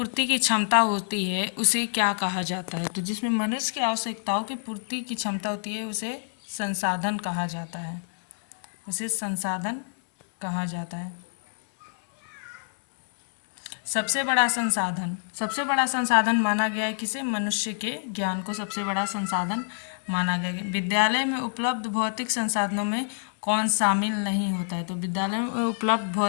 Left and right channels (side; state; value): right; silent; digital silence